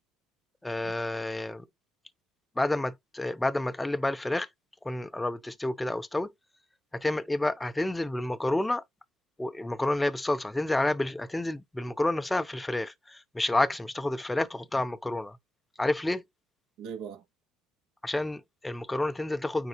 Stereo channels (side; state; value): both; normal; correlation 0.98